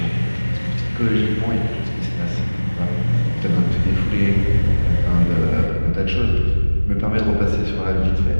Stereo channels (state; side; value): inverted; both; correlation -1.00